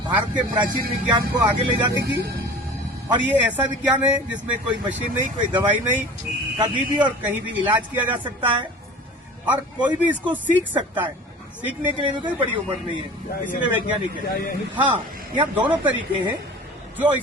भारत के प्राचीन विज्ञान को आगे ले जाने की, और ये ऐसा विज्ञान है जिसमें कोई मशीन नहीं, कोई दवाई नहीं, कभी भी और कहीं भी इलाज किया जा सकता है और कोई भी इसको सीख सकता है। सीखने के लिए भी कोई बड़ी उम्र नहीं है, इसलिए वैज्ञानिक है। हाँ, यहाँ दोनों तरीके हैं। जो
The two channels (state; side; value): normal; both; correlation 0.41